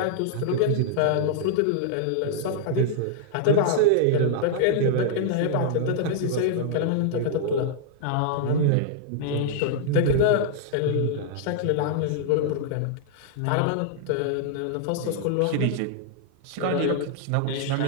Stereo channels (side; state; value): both; different; correlation -0.01